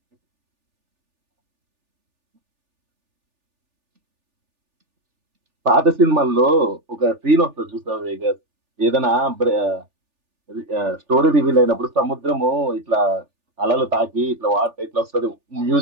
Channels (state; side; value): late; left; 3.4 ms